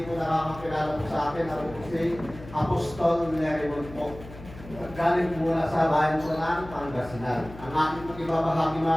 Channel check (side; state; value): left; noise; hum, 16 dB below the sound